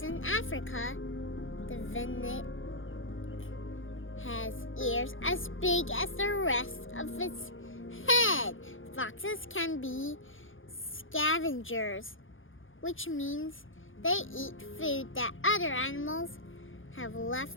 in Africa, the Vinnic, has ears as big as the rest of its head. Foxes can be scavengers, which means they eat food that other animals have left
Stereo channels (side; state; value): right; late; 0.58 ms